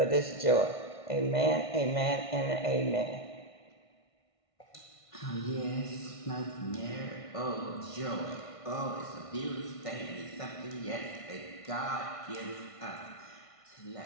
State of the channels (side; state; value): right; late; 1.6 ms